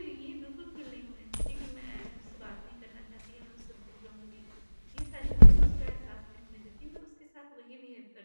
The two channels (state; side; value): inverted; both; correlation -1.00